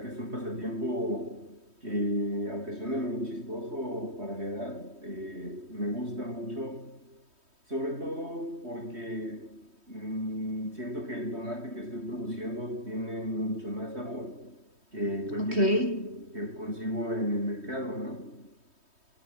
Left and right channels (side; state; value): left; late; 3.2 ms